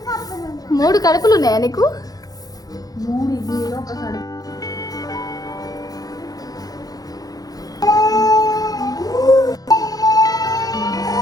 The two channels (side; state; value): right; late; 0.18 ms